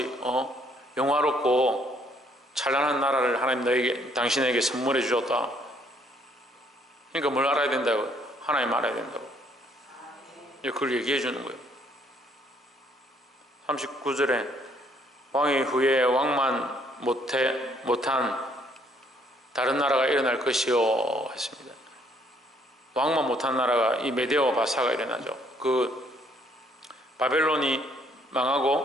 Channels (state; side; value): normal; both; correlation 0.66